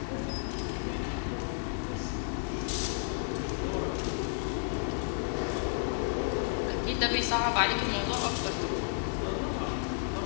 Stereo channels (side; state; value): right; silent; 56 dB below the other